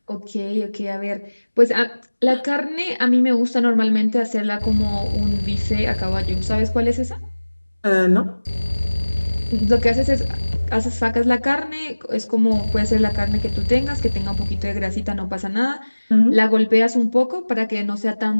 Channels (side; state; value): both; inverted; correlation -1.00